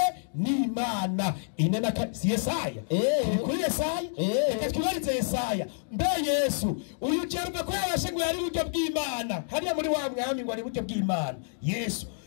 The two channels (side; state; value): right; silent; digital silence